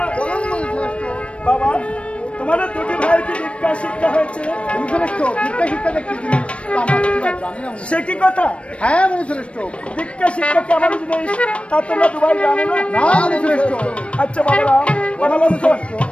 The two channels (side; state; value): right; late; 0.061 ms